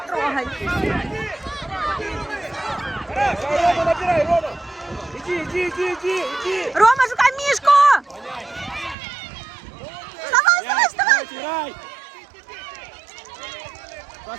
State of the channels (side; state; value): left; drops out; at 9.0 s